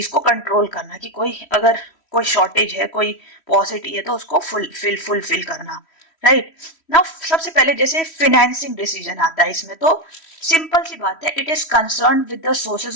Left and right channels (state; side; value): late; right; 3.1 ms